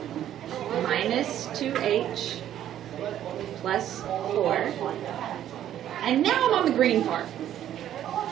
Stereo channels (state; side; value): quieter; left; 11.3 dB